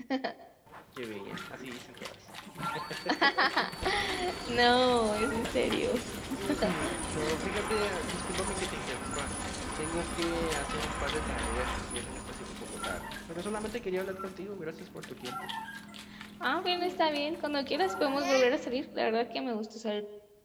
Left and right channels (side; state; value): both; identical; correlation 1.00